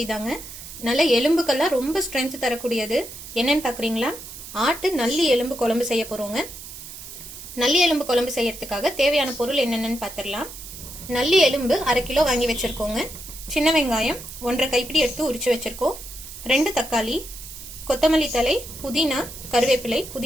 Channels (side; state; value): right; noise; hiss, 13 dB below the sound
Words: தாங்க. நல்ல எலும்புக்கெல்லாம் ரொம்ப ஸ்ட்ரென்த் தரக்கூடியது. என்னன்னு பார்க்குறீங்களா? ஆட்டு நல்லி எலும்பு குழம்பு செய்ய போறோங்க. நல்லி எலும்பு குழம்பு செய்யறதுக்காக தேவையான பொருள் என்னென்னு பார்த்துடலாம். நல்லி எலும்பு 1/2 கிலோ வாங்கி வச்சிருக்கோங்க. சின்ன வெங்காயம் 1.5 கைப்பிடி எடுத்து உரிச்சு வச்சிருக்கோம். 2 தக்காளி, கொத்தமல்லி தழை, புதினா, கருவேப்பிலை.